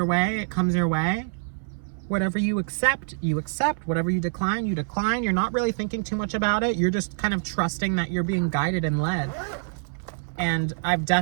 way, it comes your way. Whatever you accept, you accept. Whatever you decline, you decline. You're not really thinking too much about it. You're just kind of trusting that you're being guided and led. And I've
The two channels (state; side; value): silent; left; 61 dB below the other